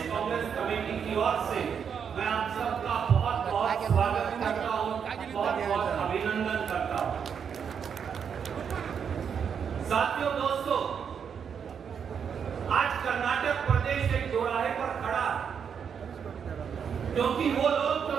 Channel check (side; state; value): left; quieter; 7.2 dB